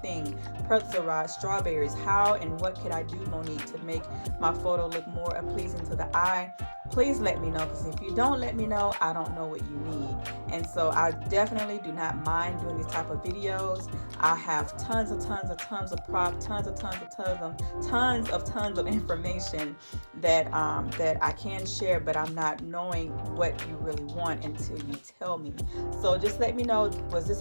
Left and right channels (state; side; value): inverted; both; correlation -1.00